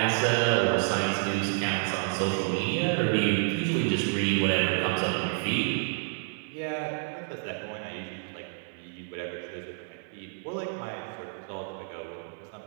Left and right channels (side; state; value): left; silent; 58 dB below the other